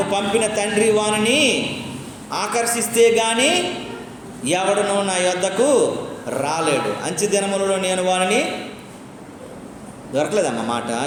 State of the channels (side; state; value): both; identical; correlation 1.00